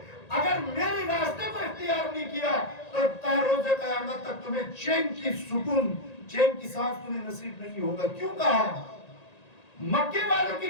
اگر میرے راستے کو اختیار نہیں کیا تو تا روز قیامت تک تمہیں چین کی سکون، چین کی سانس تمہیں نصیب نہیں ہوگا. کیوں کہا؟ مکے والوں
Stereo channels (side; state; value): right; late; 1.9 ms